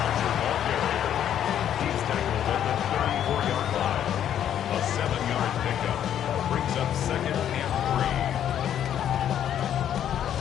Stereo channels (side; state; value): right; quieter; 10.1 dB